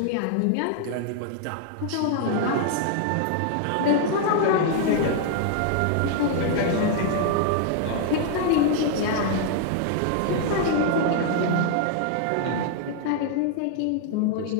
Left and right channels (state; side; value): different; both; correlation 0.00